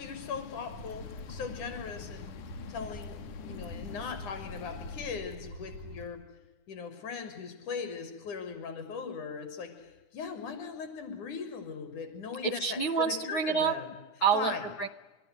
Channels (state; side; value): late; right; 9.8 ms